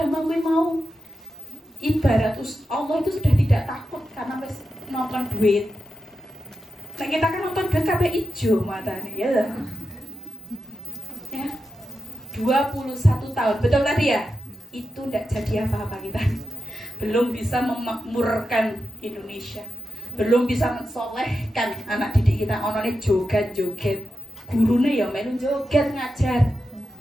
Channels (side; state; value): both; normal; correlation 0.90